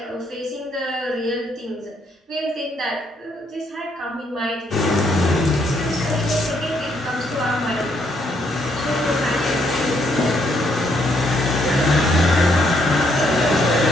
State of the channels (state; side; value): normal; both; correlation 0.72